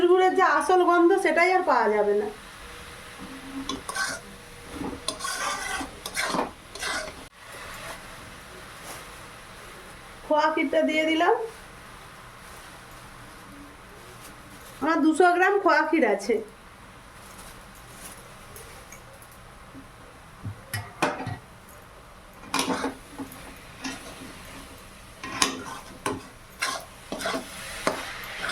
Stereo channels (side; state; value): both; identical; correlation 1.00